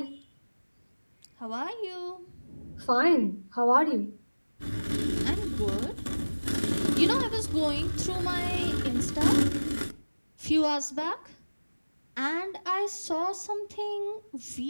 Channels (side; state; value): both; inverted; correlation -1.00